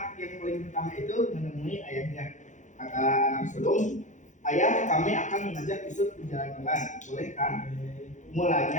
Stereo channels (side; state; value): right; late; 0.36 ms